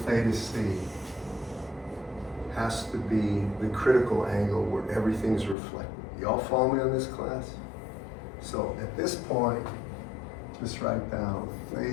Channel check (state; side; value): drops out; right; at 5.6 s